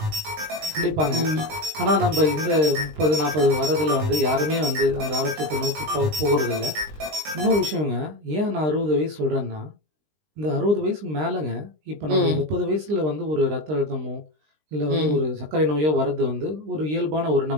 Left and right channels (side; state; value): left; late; 20 ms